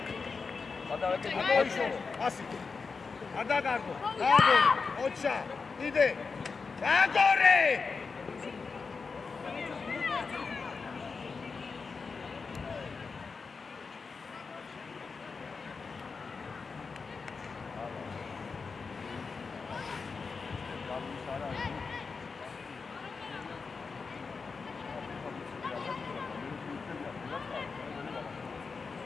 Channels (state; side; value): quieter; right; 4.8 dB